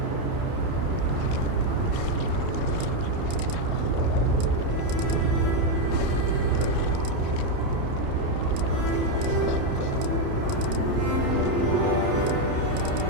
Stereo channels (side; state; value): left; late; 29 ms